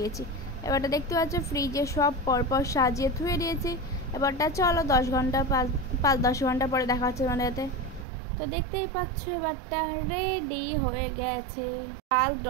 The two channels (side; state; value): left; drops out; at 8.1 s